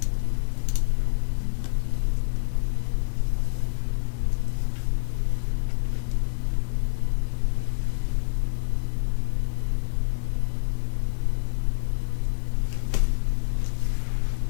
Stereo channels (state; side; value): silent; right; digital silence